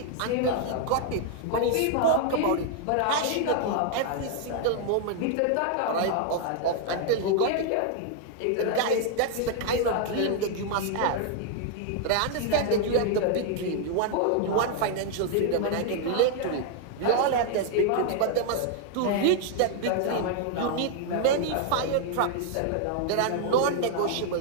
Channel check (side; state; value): both; different; correlation 0.00